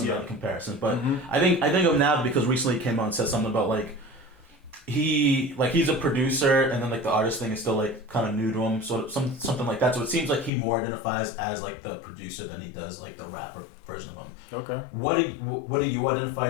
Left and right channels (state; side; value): drops out; right; at 10.5 s